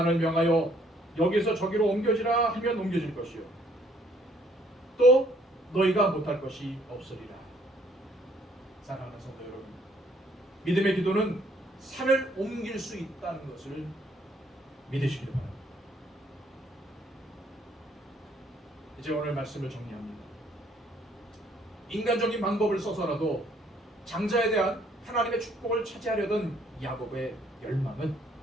명하여 여기서 저기로 옮겨지라 하면 옮겨질 것이요 또 너희가 못할 것이 없으리라. 사랑하는 성도 여러분, 믿음의 기도는 산을 옮길 수 있다는 것을 믿으시길 바랍니다. 이제 오늘 말씀을 정리합니다. 인간적인 방법을 써서라도 장자에 대한 하나님의 축복을 차지하려던 야곱의 열망은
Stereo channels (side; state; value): both; normal; correlation 0.64